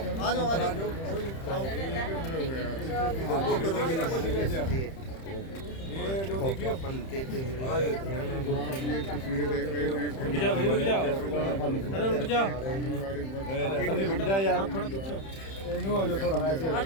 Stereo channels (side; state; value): right; late; 31 ms